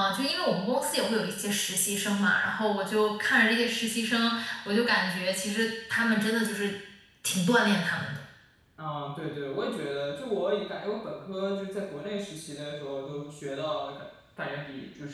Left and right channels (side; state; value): both; identical; correlation 1.00